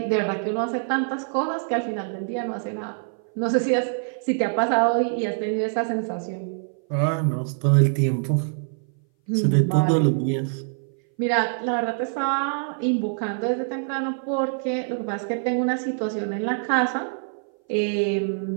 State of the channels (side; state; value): left; silent; 58 dB below the other